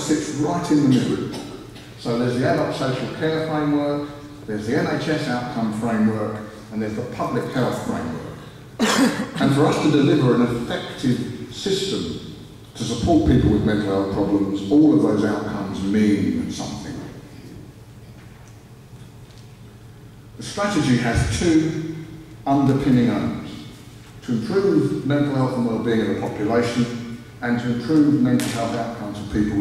right in the middle. So there's the adult social care framework, there's the NHS outcome framework, and there's the public health framework. And for us to deliver an effective system to support people with mental health problems, all of those outcomes mean something. The strategy has 2 underpinning aims: to improve mental health and well-being of the population, and to improve mental health outcomes for people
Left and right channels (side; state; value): both; identical; correlation 1.00